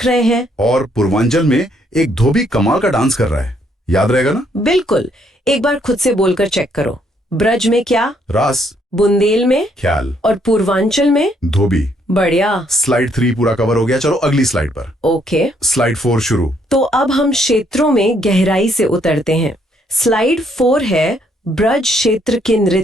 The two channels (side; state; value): both; normal; correlation 0.70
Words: रहे हैं, और पूर्वांचल में एक धोबी कमाल का डांस कर रहा है। याद रहेगा ना? बिल्कुल। एक बार खुद से बोलकर चेक करो। ब्रज में क्या? रास। बुंदेल में ख्याल। और पूर्वांचल में धोबी। बढ़िया। स्लाइड 3 पूरा कवर हो गया। चलो अगली स्लाइड पर। ओके। स्लाइड 4 शुरू। तो अब हम क्षेत्रों में गहराई से उतरते हैं। स्लाइड 4 है ब्रज क्षेत्र के